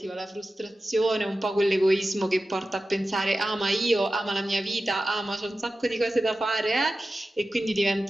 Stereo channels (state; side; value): normal; both; correlation 0.94